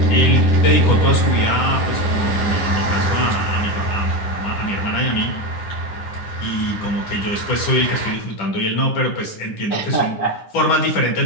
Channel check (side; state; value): right; late; 10 ms